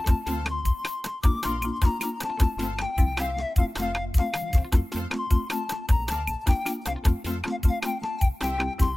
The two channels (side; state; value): both; normal; correlation 0.97